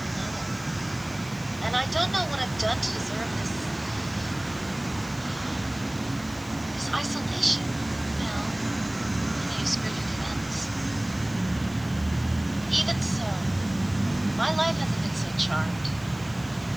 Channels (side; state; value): right; noise; hiss, 22 dB below the sound